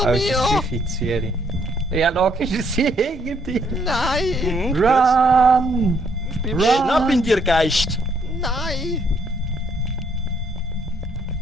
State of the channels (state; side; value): normal; both; correlation 0.69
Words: Als mir! 5 ins 4. Ja, logisch ist sie hinter dir. Nein! Mhm, gut. Run! bin Schnapp in dir, Geist! Nein!